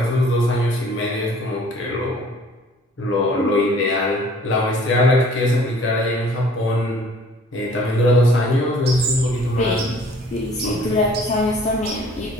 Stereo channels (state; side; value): normal; both; correlation 0.54